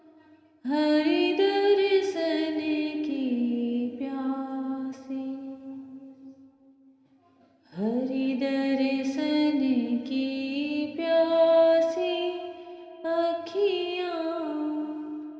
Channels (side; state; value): both; identical; correlation 1.00